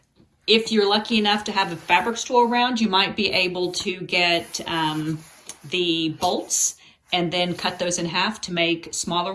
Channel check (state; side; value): identical; both; correlation 1.00